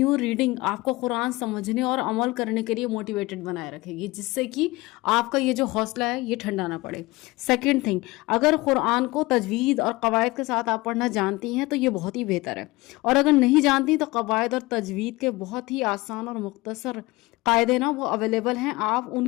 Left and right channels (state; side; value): quieter; right; 21.5 dB